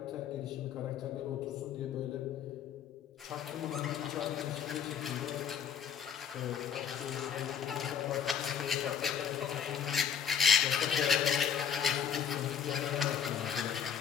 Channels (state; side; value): quieter; right; 7.9 dB